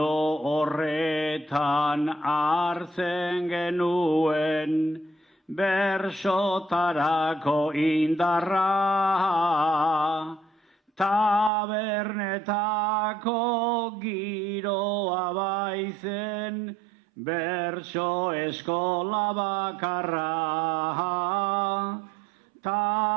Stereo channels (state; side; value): drops out; left; at 11.5 s